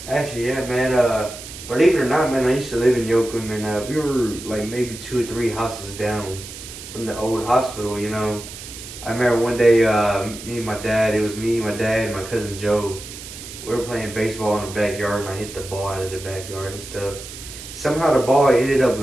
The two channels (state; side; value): noise; right; hiss, 13 dB below the sound